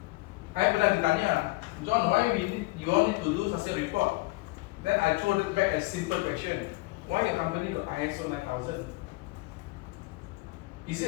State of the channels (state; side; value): quieter; right; 21.6 dB